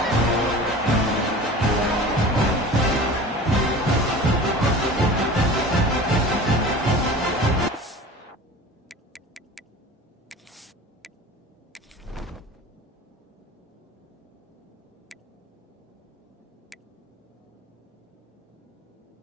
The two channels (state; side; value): normal; both; correlation 0.38